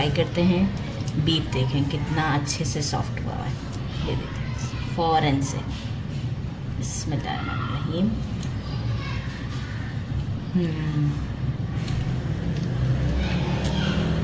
करते हैं। बीफ देखें कितना अच्छे से सॉफ्ट हुआ है, ये देखें फ़ौरन से। बिस्मिल्लाहिर्रहमानिर्रहीम।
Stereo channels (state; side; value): identical; both; correlation 1.00